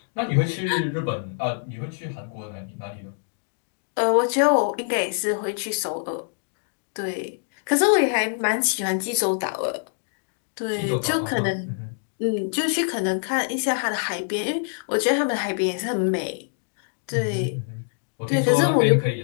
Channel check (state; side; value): silent; right; digital silence